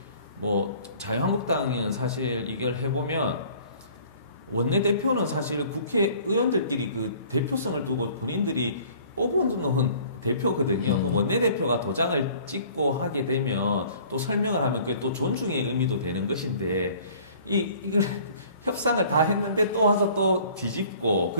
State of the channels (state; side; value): inverted; both; correlation -0.52